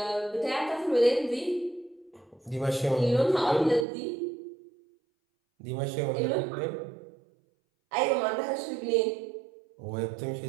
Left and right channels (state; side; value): drops out; left; at 3.9 s